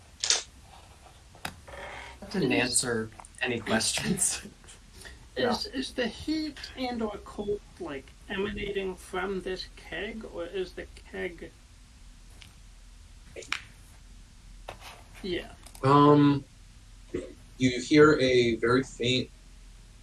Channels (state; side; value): identical; both; correlation 1.00